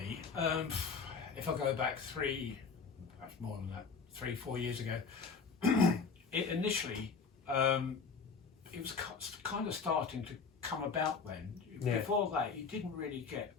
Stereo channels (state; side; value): quieter; right; 5.3 dB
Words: if I go back perhaps more than that, 3-4 years ago, it initially it was kind of starting to come about then. Yeah. Before that, you didn't really get